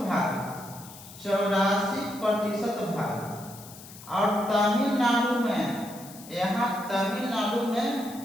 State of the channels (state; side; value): noise; left; hiss, 17 dB below the sound